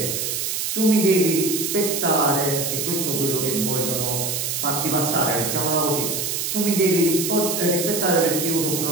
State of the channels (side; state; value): right; noise; hiss, 1 dB below the sound